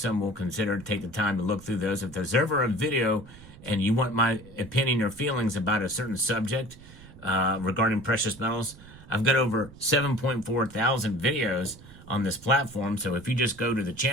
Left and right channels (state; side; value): noise; right; rumble, 20 dB below the sound